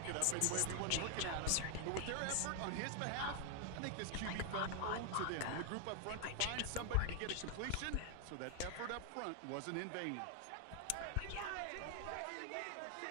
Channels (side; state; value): both; different; correlation 0.00